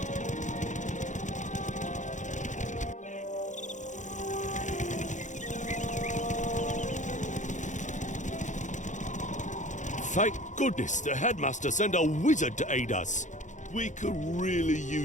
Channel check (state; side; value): late; right; 0.36 ms